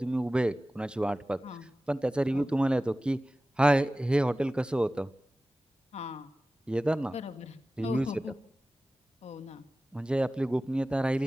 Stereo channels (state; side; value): normal; both; correlation 0.96